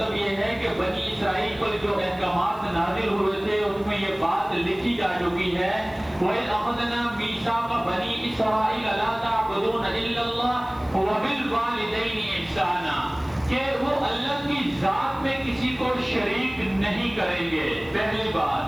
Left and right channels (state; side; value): noise; right; hiss, 28 dB below the sound